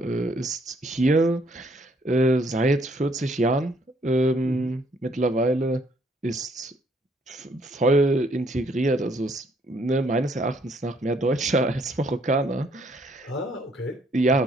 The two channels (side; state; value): both; normal; correlation 0.67